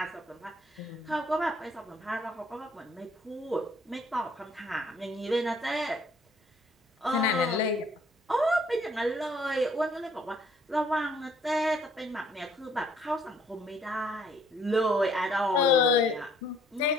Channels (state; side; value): normal; both; correlation 0.62